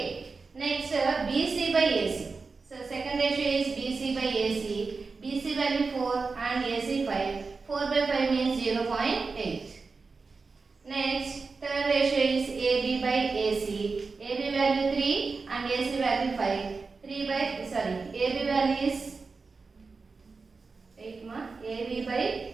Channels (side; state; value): left; quieter; 4.4 dB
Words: Next BC by AC. So second ratio is BC by AC. BC value 4 and AC 5.